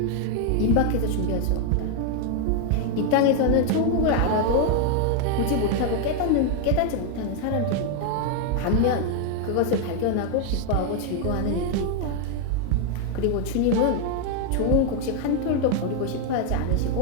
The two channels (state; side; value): different; both; correlation 0.01